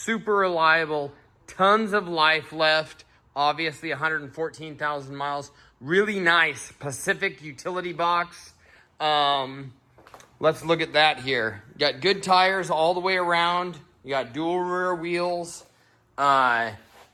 reliable, tons of life left, obviously 114,000 miles, really nice Pacific utility box. Let's look at that here. You got good tires all the way around, you got dual rear wheels,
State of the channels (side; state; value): both; identical; correlation 1.00